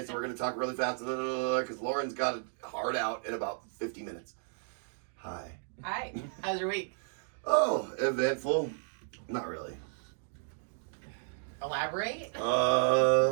so we're going to talk really fast because Lauren's got a hard out in about 50 minutes. Hi. Hi. How's your week? Oh, eventful. Not really. Elaborate.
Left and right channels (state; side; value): silent; left; digital silence